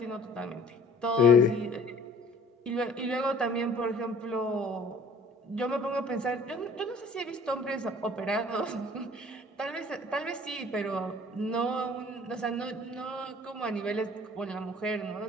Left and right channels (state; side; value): normal; both; correlation 0.51